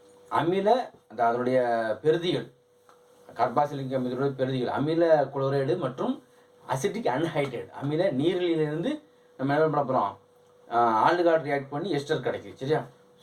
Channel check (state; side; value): identical; both; correlation 1.00